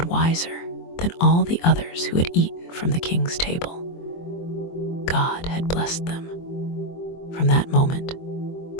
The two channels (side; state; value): right; late; 23 ms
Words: wiser than all the others who had eaten from the king's table. God had blessed them. From that moment,